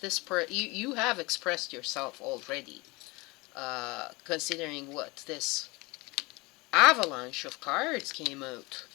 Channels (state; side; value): quieter; right; 24.5 dB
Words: you have expressed yourself already, considering what this avalanche of cards came out.